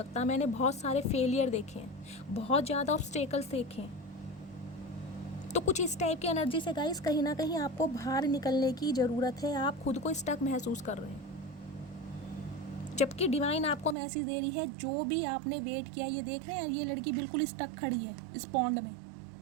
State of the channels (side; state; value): left; drops out; at 14.0 s